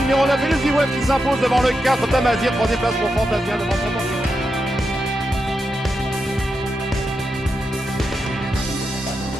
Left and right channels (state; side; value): normal; both; correlation 0.86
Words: 9, Elusive Wave qui s'impose devant le 4, Tamazir, troisième place pour Fantasia devant son bon.